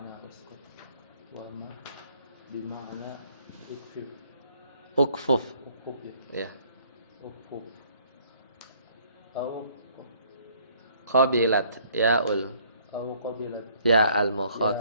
uskut wa ma bima'na ukfuf ya. Ukfuf au qabilat ya'ul ya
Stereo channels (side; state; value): both; inverted; correlation -0.62